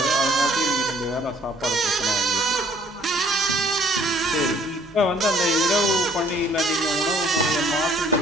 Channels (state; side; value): normal; both; correlation 0.59